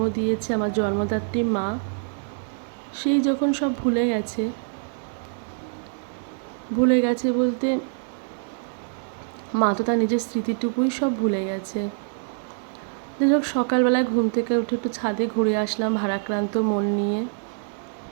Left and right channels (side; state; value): left; silent; digital silence